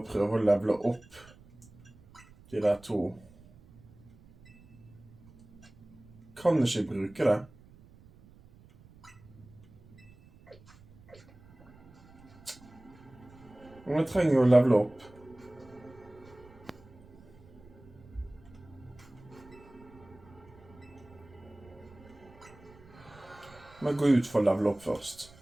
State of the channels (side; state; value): right; noise; rumble, 23 dB below the sound